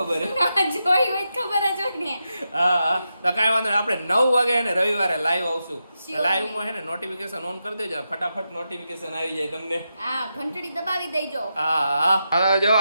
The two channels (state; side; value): inverted; both; correlation -0.87